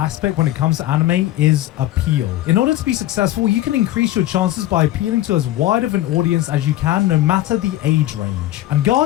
when it comes to anime is appeal. In order to be successful, you can increase your chances by appealing to as wide of an audience as you can, no matter the age range. And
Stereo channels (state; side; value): quieter; right; 14.8 dB